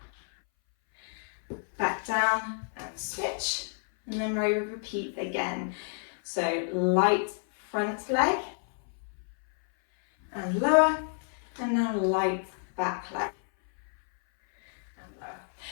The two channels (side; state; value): right; silent; 58 dB below the other